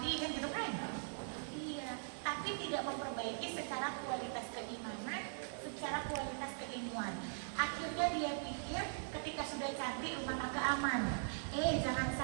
kan gitu kan? Iya, tapi tidak memperbaiki secara kualitas keimanan, secara kualitas keilmuan. Akhirnya dia pikir ketika sudah cantik rumah tangga aman. Jangan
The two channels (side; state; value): left; silent; digital silence